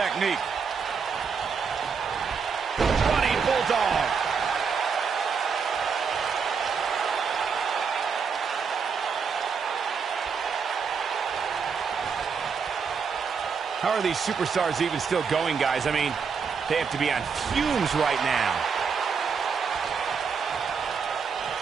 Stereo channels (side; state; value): left; quieter; 5.9 dB